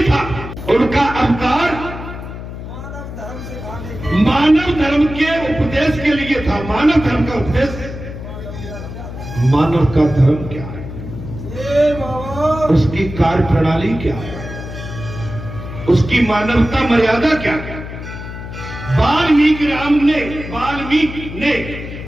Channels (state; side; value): noise; left; hum, 10 dB below the sound